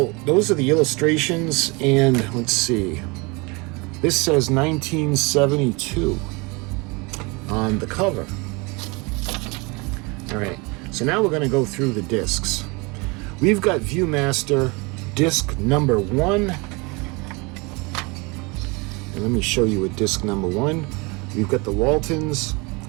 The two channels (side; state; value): left; quieter; 27.5 dB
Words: those are the illustrations, and let's see. This says 1972 on the cover. All right, so now we're going to go through the discs. We've got Viewmaster disc number 1. And let me show you what disc number 1. We've got the Waltons,